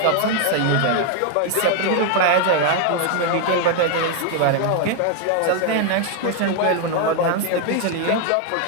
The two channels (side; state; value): both; different; correlation 0.00